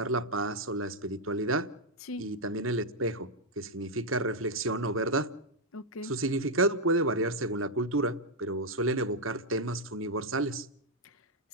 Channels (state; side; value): normal; both; correlation -0.01